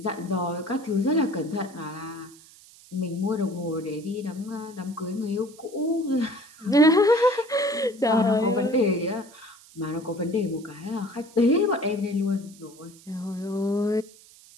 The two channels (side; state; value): right; noise; hiss, 23 dB below the sound